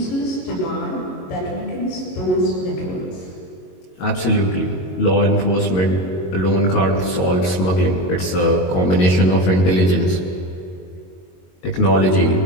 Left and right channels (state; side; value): late; right; 22 ms